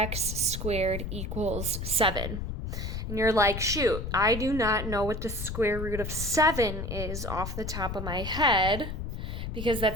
squared equals 7. And you're like, shoot, I do not know what the square root of 7 is off the top of my head, because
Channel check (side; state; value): left; noise; rumble, 5 dB below the sound